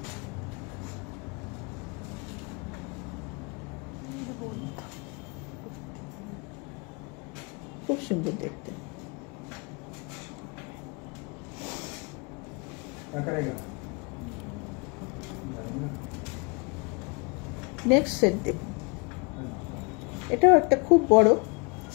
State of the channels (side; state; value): right; quieter; 32.1 dB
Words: খুব সুন্দর দেখতে। নেক্সট সেট দেখুন, এটাও একটা খুব বড়